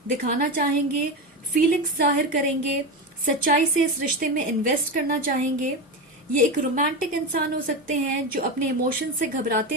दिखाना चाहेंगे, फीलिंग्स जाहिर करेंगे, सच्चाई से इस रिश्ते में इन्वेस्ट करना चाहेंगे। ये एक रोमांटिक इंसान हो सकते हैं जो अपने इमोशंस से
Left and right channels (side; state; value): both; normal; correlation 0.19